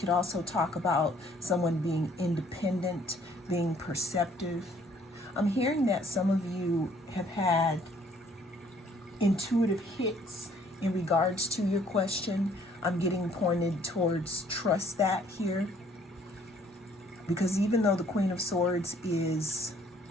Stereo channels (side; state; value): both; normal; correlation 0.61